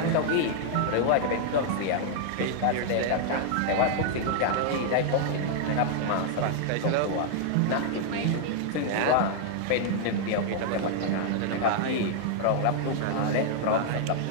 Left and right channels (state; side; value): different; both; correlation -0.01